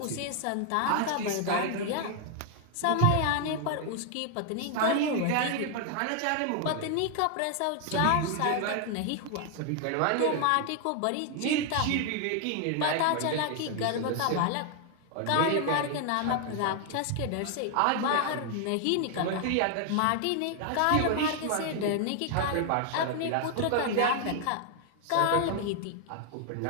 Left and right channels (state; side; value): different; both; correlation 0.00